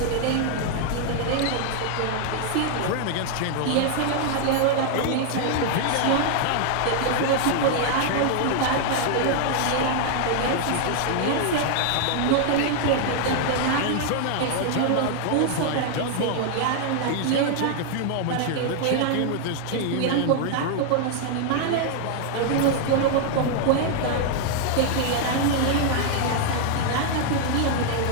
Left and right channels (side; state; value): both; different; correlation 0.00